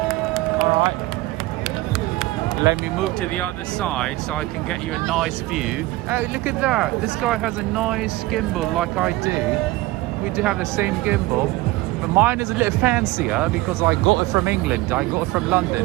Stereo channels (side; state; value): left; quieter; 19.3 dB